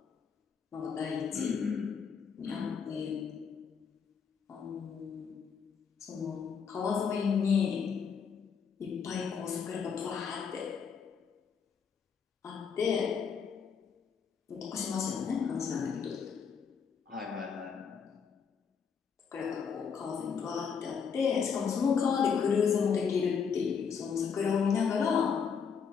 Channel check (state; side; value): quieter; right; 6.4 dB